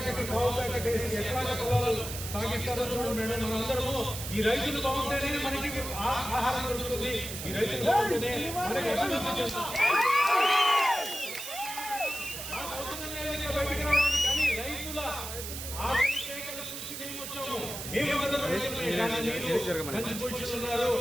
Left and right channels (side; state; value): right; noise; hiss, 8 dB below the sound